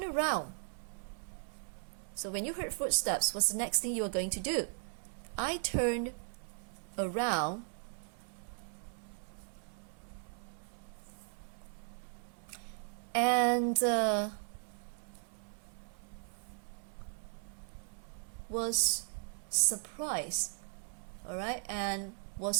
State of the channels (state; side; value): silent; left; 53 dB below the other